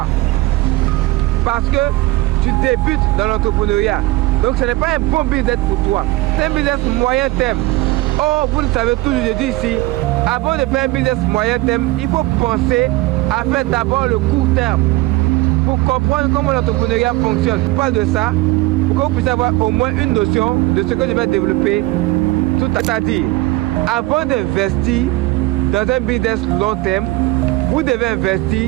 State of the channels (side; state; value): left; quieter; 19.3 dB